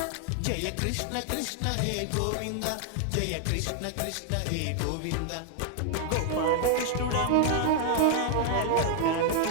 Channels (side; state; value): both; different; correlation 0.00